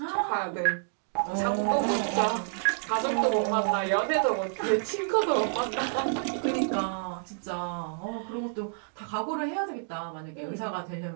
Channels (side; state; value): left; silent; digital silence